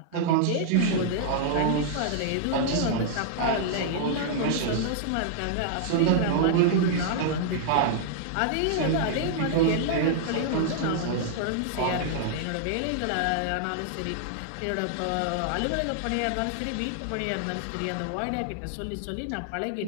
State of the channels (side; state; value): both; different; correlation -0.01